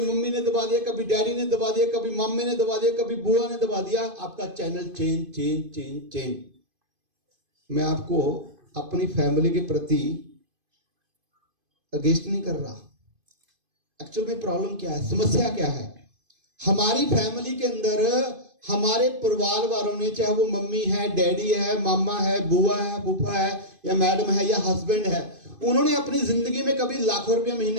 मम्मी ने दबा दिया, कभी डैडी ने दबा दिया, कभी मम्मी ने दबा दिया, कभी बुआ ने दबा दिया, आपका चैनल चेंज। मैं आपको अपनी फैमिली के प्रति अगेंस्ट नहीं कर रहा। एक्चुअल में प्रॉब्लम क्या है, समस्या क्या है, हमारी फैमिली के अंदर हमारे परिवार वालों ने, चाहे वो मम्मी है, डैडी है, मामा है, बुआ है, फूफा है, या मैडम है, या हस्बैंड है, उन्होंने अपनी जिंदगी में कभी लाखों रुपया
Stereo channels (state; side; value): late; left; 2.5 ms